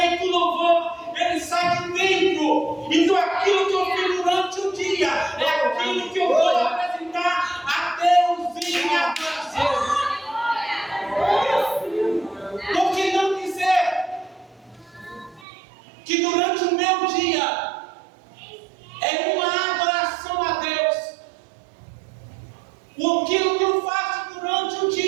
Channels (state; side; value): drops out; left; at 15.5 s